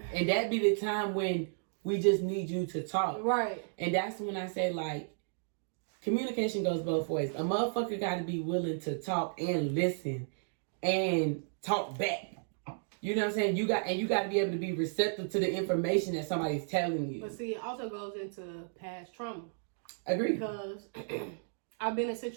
And that be the time when we just need you to talk. Right. And that's when I say, like, communication goes both ways. A motherfucker got to be willing to talk and listen and talk back. You know what I'm saying? You got to be able to be receptive to the information that somebody's telling you. But see, it also goes into past trauma. Agree. Because I've been in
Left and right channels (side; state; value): left; silent; digital silence